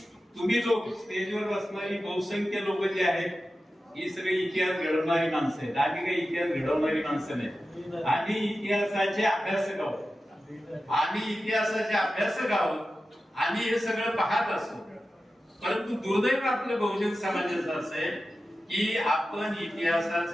तुम्ही लोक स्टेजवर बसणारी बहुसंख्य लोक जे आहेत ही सगळी इतिहास घडवणारी माणसं आहेत. आम्ही काही इतिहास घडवणारी माणसं नाही. आम्ही इतिहासाचे अभ्यासक आहोत. आम्ही हे सगळं पाहत असतो. परंतु दुर्दैव आपल्या बहुजन समाजाचं असं आहे की आपण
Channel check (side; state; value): both; normal; correlation 0.93